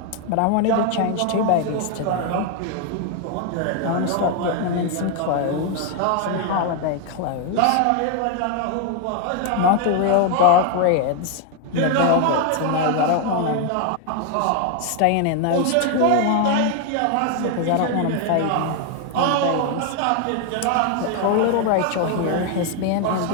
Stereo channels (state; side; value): different; both; correlation 0.00